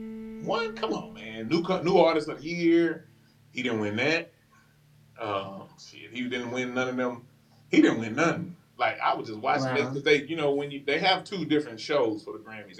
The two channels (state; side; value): identical; both; correlation 1.00